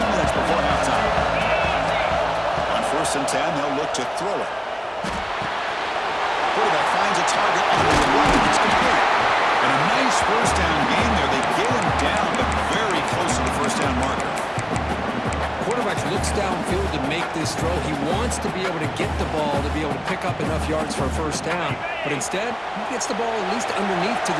before halftime. first and 10, they'll look to throw it. Quarterback finds a target on the right. It's complete. And a nice first down gain there. They get him down, but very close to the first down marker. Quarterback looks downfield to make this throw. He wants to be able to get the ball to be able to pick up enough yards for a first down. But instead, he gets the ball at least underneath to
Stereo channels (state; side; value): identical; both; correlation 1.00